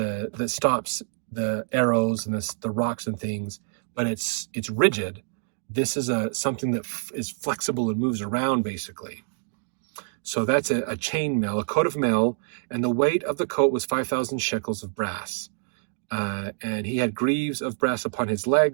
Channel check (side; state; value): left; silent; digital silence